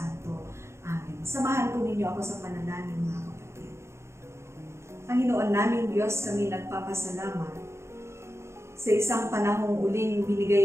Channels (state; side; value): late; left; 0.13 ms